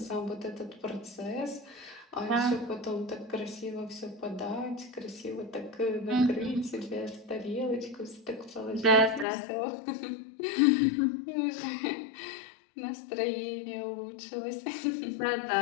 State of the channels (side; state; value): right; drops out; at 9.2 s